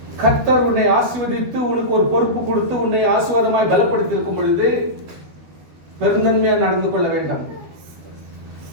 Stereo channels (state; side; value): late; left; 13 ms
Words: கர்த்தர் உன்னை ஆசீர்வதித்து உனக்கு ஒரு பொறுப்பு கொடுத்து உன்னை ஆசீர்வாதமாய் பலப்படுத்தி இருக்கும் பொழுது பெருந்தன்மையா நடந்து கொள்ள வேண்டும்.